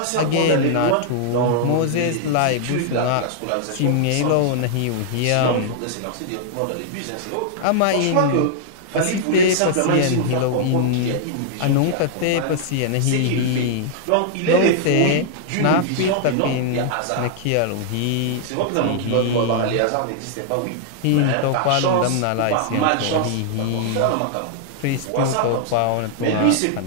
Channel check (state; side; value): different; both; correlation -0.01